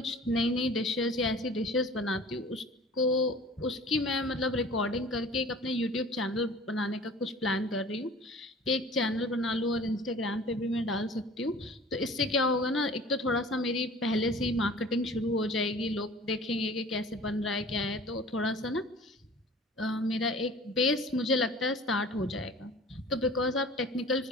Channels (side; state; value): both; normal; correlation 0.45